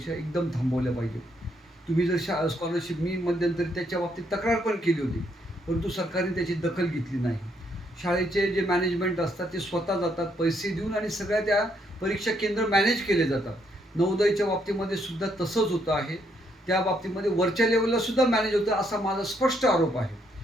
एकदम थांबवल्या पाहिजेत. तुम्ही जर स्कॉलरशिप मी मध्यंतरी त्याच्या बाबतीत तक्रार पण केली होती, परंतु सरकारने त्याची दखल घेतली नाही. शाळेचे जे मॅनेजमेंट असतात ते स्वतः जातात पैसे देऊन आणि सगळ्या त्या परीक्षा केंद्र मॅनेज केले जातात. नवोदयच्या बाबतीमध्ये सुद्धा तसंच होतं आहे. त्या बाबतीमध्ये वरच्या लेवलला सुद्धा मॅनेज होतं असा माझा स्पष्ट आरोप आहे.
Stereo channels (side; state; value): both; normal; correlation 0.73